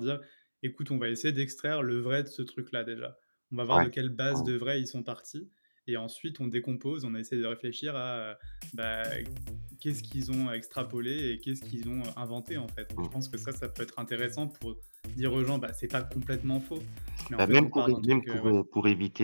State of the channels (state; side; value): inverted; both; correlation -1.00